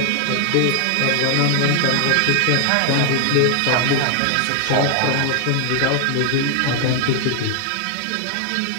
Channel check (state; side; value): different; both; correlation 0.00